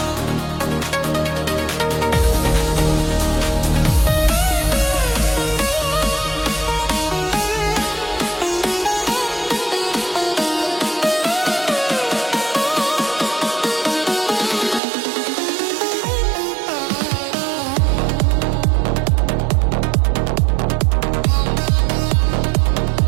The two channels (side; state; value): left; drops out; at 14.8 s